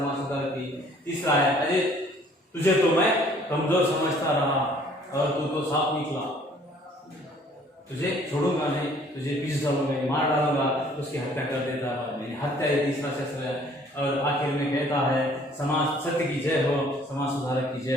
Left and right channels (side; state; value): both; normal; correlation 0.57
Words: सुधार की। तीसरा है अरे तुझे तो मैं कमजोर समझता रहा और तू तो साफ निकला, तुझे छोड़ूंगा नहीं, तुझे पीस डालूंगा, मार डालूंगा, उसकी हत्या कर देता है। हत्या ये तीसरा शस्त्र है। और आखिर में कहता है समाज सत्य की जय हो, समाज सुधारक की जय